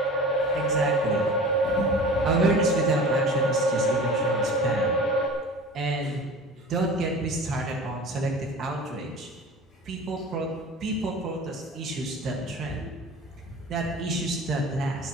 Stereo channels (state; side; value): normal; both; correlation 0.39